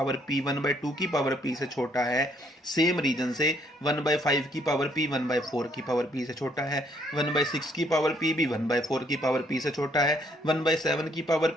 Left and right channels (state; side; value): normal; both; correlation 0.67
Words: p 1/2 की पावर p से छोटा है, सेम रीजन से 1/5 की पावर p 1/4 की पावर p से छोटा है, 1/6 की पावर p भी 1/4 की पावर p से छोटा है, 1/7 की